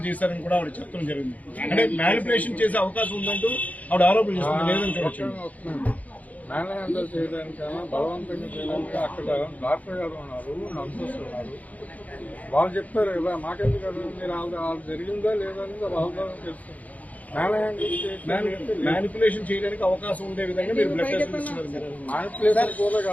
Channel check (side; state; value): right; late; 0.074 ms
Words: చేశారని కూడా ఆవిడ చెప్పడం జరిగింది. అంటే మ్యానిపులేషన్ చేసే అవకాశం ఉందంటూ ఆవిడ ఆరోపణ చేస్తుంది. లేదని చూడొచ్చు. మ్యాన్ హ్యాండిల్ చేయడానికైనా బలవంతంగా చేయడానికి అక్కడ డాక్టర్ గారు ఉన్నారు, నర్సెస్ ఉన్నారు. వాళ్ళు చెప్తారు కదా, మాకెందుకు కదా, మీరు వాళ్ళు జరిగిందా లేదా అనేది వాళ్ళ తెలుస్తుంది. మ్యానిపులేషన్ చేయడానికి అవకాశం ఉండే విధంగా మీరు బ్లడ్ టెస్ట్ ఇస్తున్నారు. మ్యానిపులేషన్ కూడా